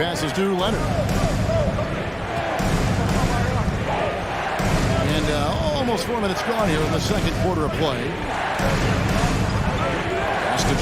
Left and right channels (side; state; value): both; identical; correlation 1.00